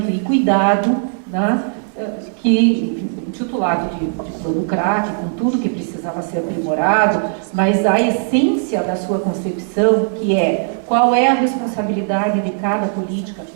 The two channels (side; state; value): left; silent; 64 dB below the other